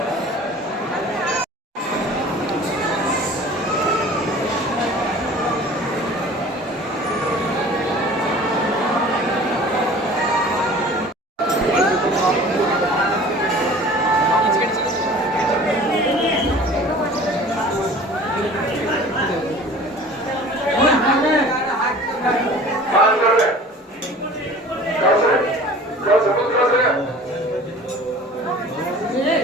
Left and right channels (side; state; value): both; normal; correlation 0.44